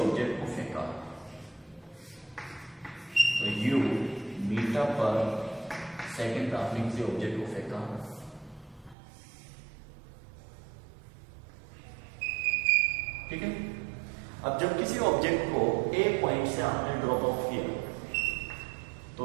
ऑब्जेक्ट को फेंका तो यू मीटर पर सेकेंड ट्रैवलिंग से ऑब्जेक्ट को फेंका। ठीक है, अब जब किसी ऑब्जेक्ट को ए पॉइंट से आपने ड्रॉप ऑफ किया तो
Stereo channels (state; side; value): drops out; left; at 9.0 s